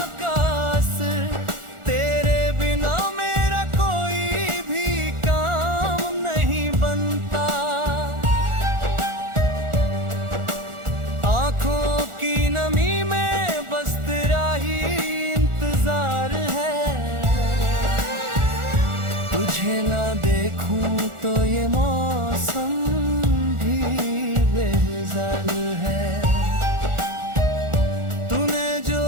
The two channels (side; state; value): left; late; 1.4 ms